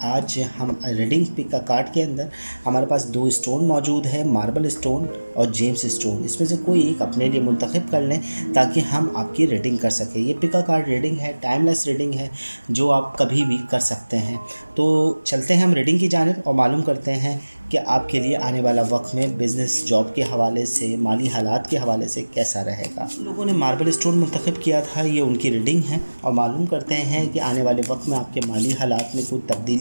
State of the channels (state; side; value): inverted; both; correlation -1.00